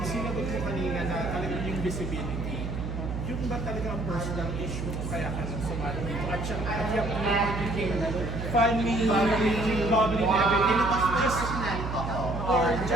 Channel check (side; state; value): right; noise; hum, 5 dB below the sound